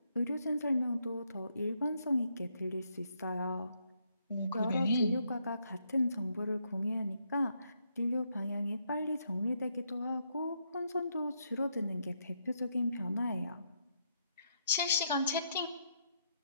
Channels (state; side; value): inverted; both; correlation -0.77